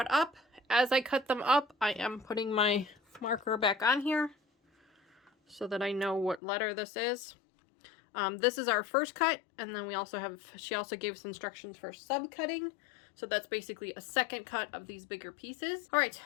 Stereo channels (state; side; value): drops out; right; at 6.4 s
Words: up. As I cut them up, I am putting my marker back on here so that I know what letter this is. This is our first cut, and then we also have, she also gave us instructions for sub-cutting. So that's basically a second cut of these bigger pieces. All right,